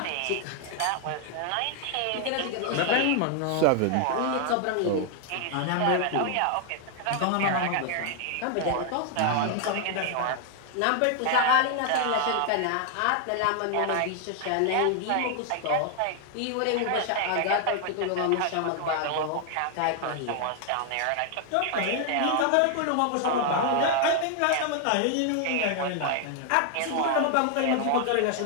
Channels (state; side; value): different; both; correlation 0.00